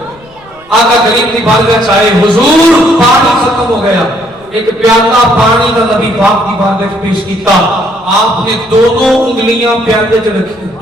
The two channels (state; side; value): noise; left; rumble, 28 dB below the sound